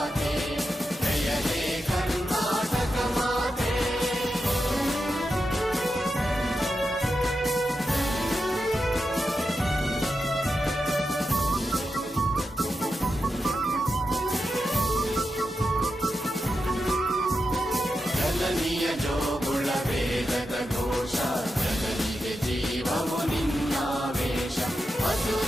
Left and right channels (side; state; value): both; normal; correlation 0.88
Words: ಜಯ ಹೇ ಕರ್ನಾಟಕ ಮಾತೆ ಜನನಿಯ ಜೋಗುಳ ವೇದದ ಘೋಷ ಜನನಿಗೆ ಜೀವವು ನಿನ್ನಾವೇಶ